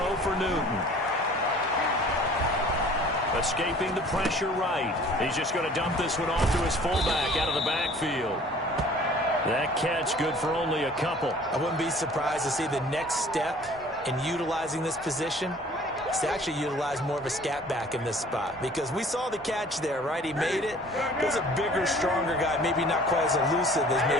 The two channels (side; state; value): both; normal; correlation 0.50